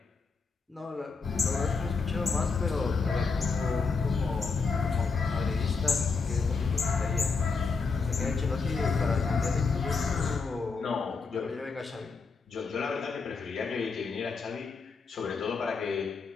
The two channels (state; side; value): quieter; right; 4.8 dB